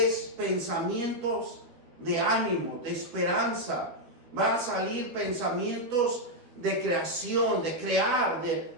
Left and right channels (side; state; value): left; late; 12 ms